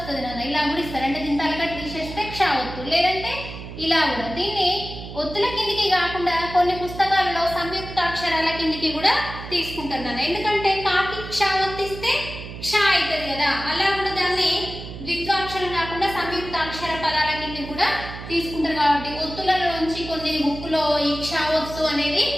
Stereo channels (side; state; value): right; noise; hum, 11 dB below the sound